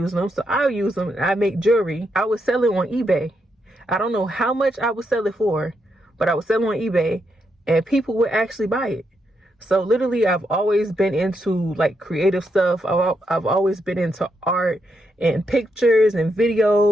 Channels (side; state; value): both; normal; correlation 0.81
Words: them, so I'll use them. I make jewelry. I would sell it on eBay. I don't know how much I would sell it for, but I would sell it on eBay and people would actually buy it. So literally, I've always been into like creative stuff. I've always been into art and pictures and